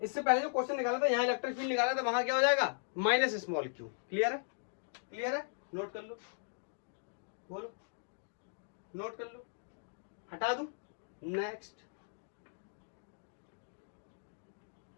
इससे पहले जो क्वेश्चन निकाला था, यहाँ इलेक्ट्रिक फील्ड निकाला था, वहां क्या हो जाएगा, माइनस स्मॉल क्यू। क्लियर है, नोट कर लो, बोलो नोट कर लो, हटा दूं, नेक्स्ट।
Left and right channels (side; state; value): right; silent; digital silence